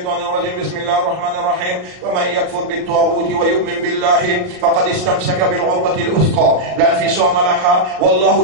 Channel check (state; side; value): late; left; 38 ms